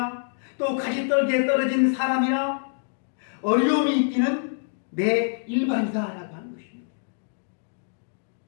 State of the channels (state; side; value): silent; right; digital silence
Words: 또 가시떨기에 떨어진 사람이나 어려움이 있기는 매 일반이다라고 하는 것입니다.